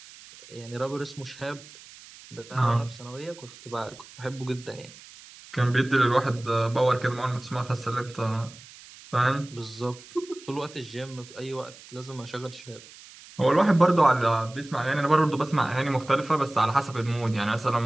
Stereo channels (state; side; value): noise; right; hiss, 20 dB below the sound